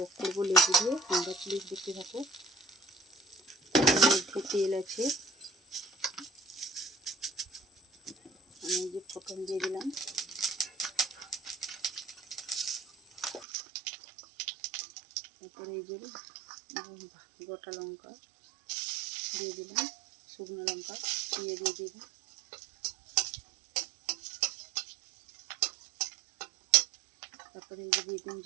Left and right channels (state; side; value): drops out; left; at 13.5 s